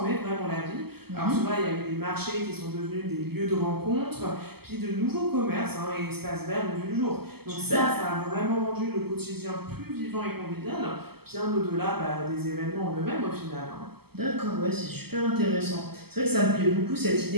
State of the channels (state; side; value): late; left; 0.96 ms